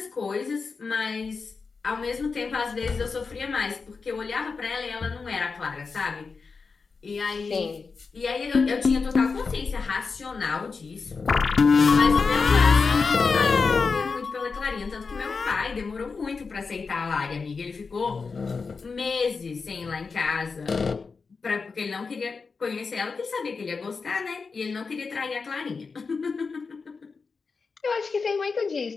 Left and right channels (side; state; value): right; quieter; 4.8 dB